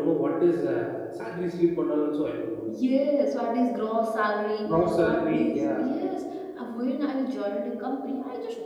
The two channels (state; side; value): identical; both; correlation 1.00